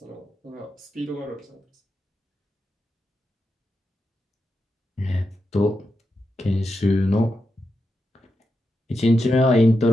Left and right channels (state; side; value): normal; both; correlation 0.87